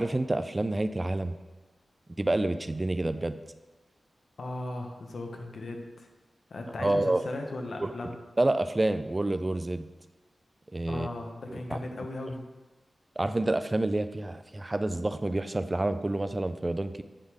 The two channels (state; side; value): normal; both; correlation 0.98